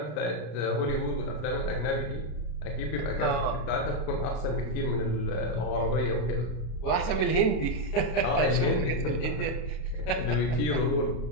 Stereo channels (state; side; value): late; right; 32 ms